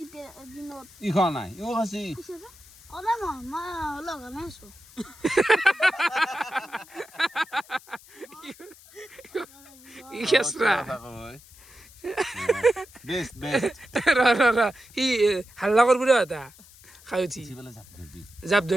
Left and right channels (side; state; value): left; noise; hiss, 23 dB below the sound